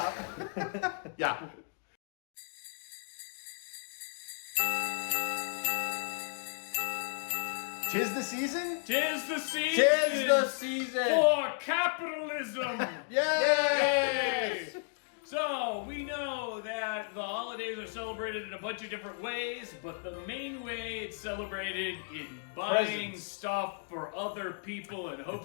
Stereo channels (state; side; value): silent; right; digital silence